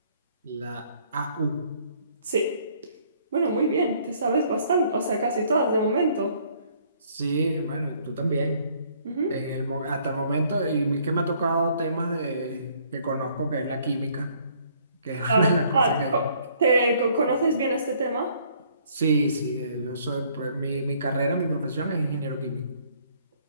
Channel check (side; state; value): both; inverted; correlation -0.63